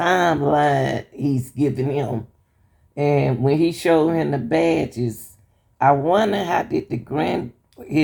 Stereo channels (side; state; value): both; identical; correlation 1.00